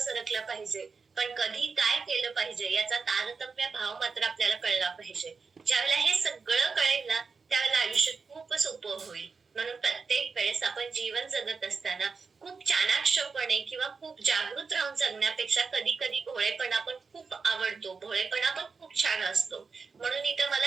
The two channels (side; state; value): left; quieter; 4.9 dB